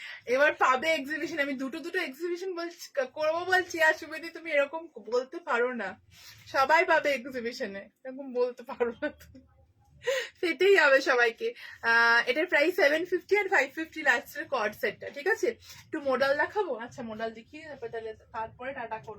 এবার পাবে এক্সিবিশন, আমি দুটো দুটো এক্সিবিশন বলছি করবো বলছি, আর সুবিধি তুমি এরকম বলতে পারো না। সবাই পাবে এক্সিবিশনে, এরকম বলতে পারো না তুমি, সেটাই হবে সবাইকে। এটার প্রাইস 750 আর 550 লাস্টের কর্ড সেটটা। ঠিক আছে একটু মডেল দেখাবো। আচ্ছা মডেল দেখিয়ে তারপরে টাটা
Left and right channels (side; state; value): both; identical; correlation 1.00